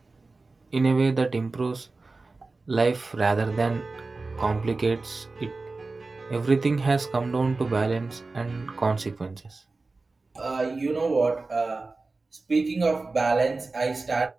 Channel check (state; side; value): quieter; left; 3.6 dB